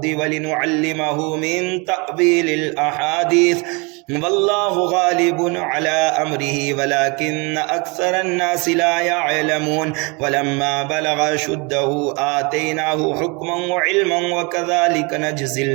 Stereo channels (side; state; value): left; quieter; 29.7 dB